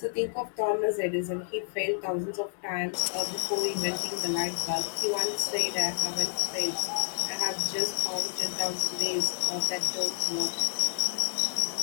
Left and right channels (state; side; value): silent; right; digital silence